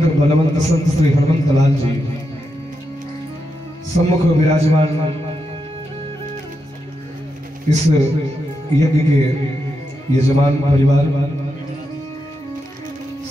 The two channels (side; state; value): both; normal; correlation 0.86